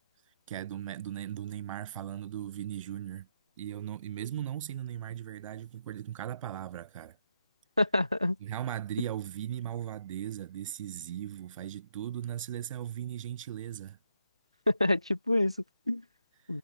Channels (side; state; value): both; inverted; correlation -0.77